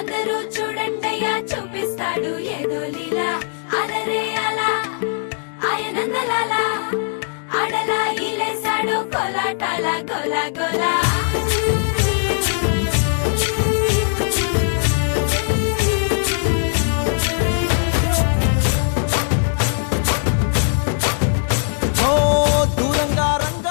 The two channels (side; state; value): right; silent; digital silence